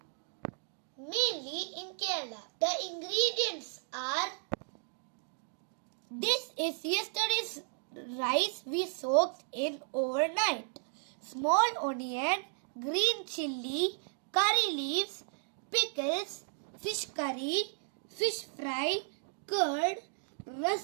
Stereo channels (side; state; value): left; silent; 55 dB below the other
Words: mainly in Kerala. The ingredients are: this is yesterday's rice we soaked in overnight, small onion, green chilli, curry leaves, pickles, fish curry, fish fry, curd,